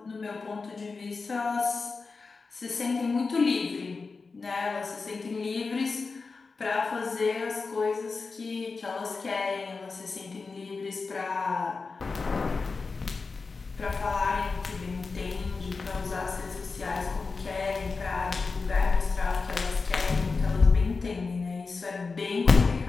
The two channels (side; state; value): right; quieter; 4.3 dB